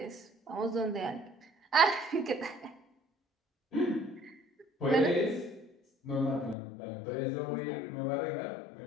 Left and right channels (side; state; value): right; drops out; at 6.6 s